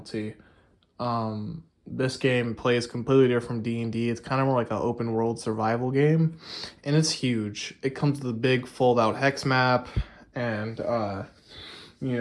This game plays completely different from D&D. It's kind of more like an open world survival game, and it's huge. It comes with a big fold out hex map, and you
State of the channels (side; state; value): both; identical; correlation 1.00